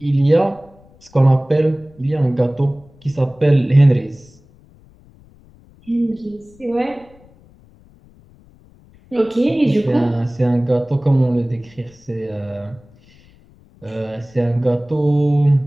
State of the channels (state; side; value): noise; left; rumble, 27 dB below the sound